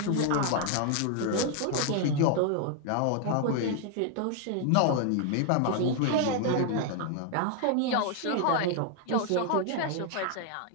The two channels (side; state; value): both; different; correlation 0.00